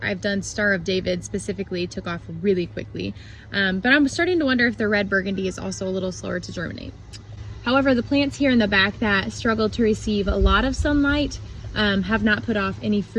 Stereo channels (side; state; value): both; identical; correlation 1.00